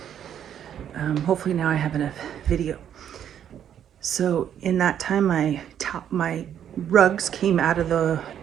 hopefully now I have enough video. So in that time, my rugs came out of the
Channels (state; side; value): quieter; left; 9.6 dB